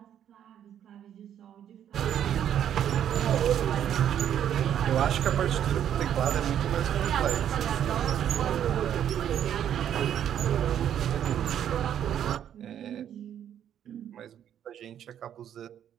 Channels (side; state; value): left; quieter; 9.9 dB